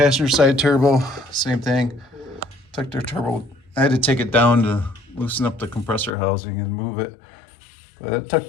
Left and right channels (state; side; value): drops out; right; at 6.2 s